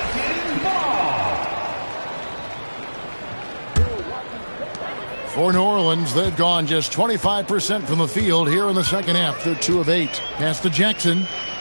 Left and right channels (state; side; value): inverted; both; correlation -1.00